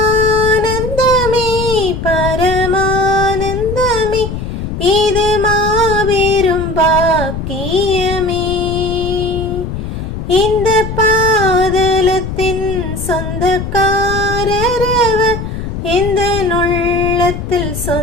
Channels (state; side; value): noise; left; rumble, 6 dB below the sound